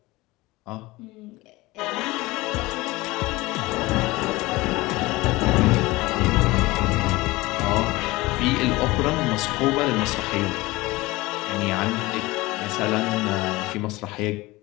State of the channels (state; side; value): quieter; right; 20.8 dB